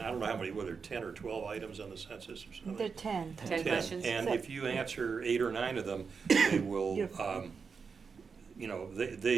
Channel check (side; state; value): left; quieter; 5.5 dB